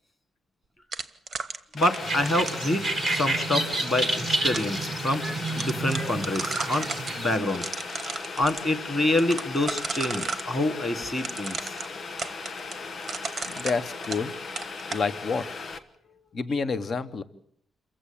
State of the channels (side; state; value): both; normal; correlation 0.77